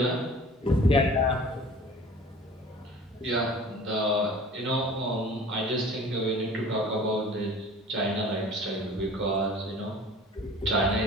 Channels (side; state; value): both; normal; correlation 0.45